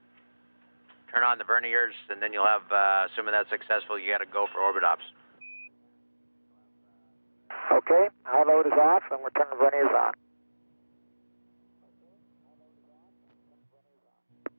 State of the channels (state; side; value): inverted; both; correlation -1.00